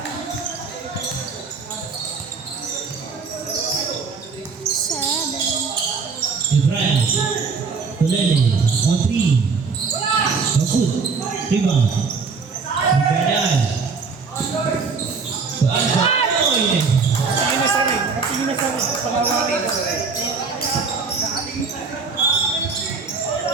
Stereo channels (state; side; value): quieter; left; 4.9 dB